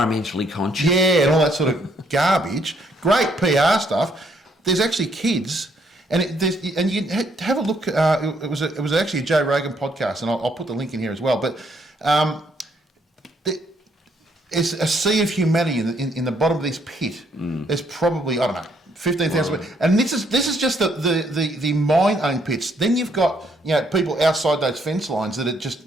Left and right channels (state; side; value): normal; both; correlation 0.70